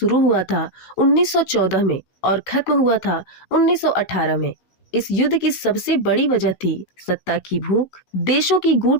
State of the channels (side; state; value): right; late; 15 ms